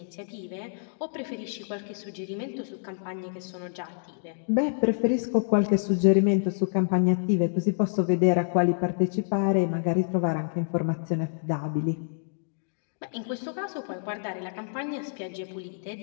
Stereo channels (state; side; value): silent; right; digital silence